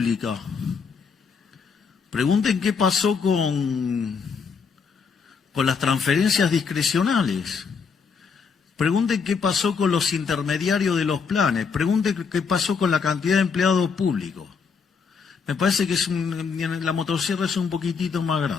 Pregunten qué pasó con con las transferencias discrecionales. Pregunten qué pasó con los intermediarios de los planes. Pregunten qué pasó con la cantidad de empleados públicos. Me parece que la motosierra es un poquitito más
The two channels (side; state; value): right; quieter; 5.7 dB